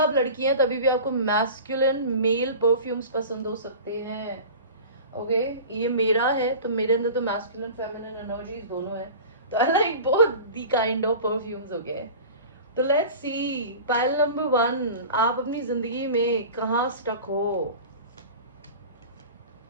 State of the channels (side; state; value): both; inverted; correlation -0.36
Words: लड़की हैं तभी भी आपको मैस्कुलिन मेल परफ्यूम्स पसंद हो सकते हैं. ओके, ये मेरा है तो मेरे अंदर तो मैस्कुलिन फेमिनिन एनर्जीज दोनों है, तो I like both the kind of perfumes. Okay, तो लेट्स सी पाइल नंबर 1, आप अपनी जिंदगी में कहाँ स्टक हो.